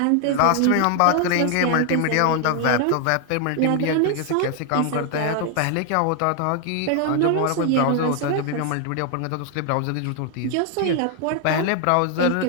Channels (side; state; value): both; different; correlation 0.00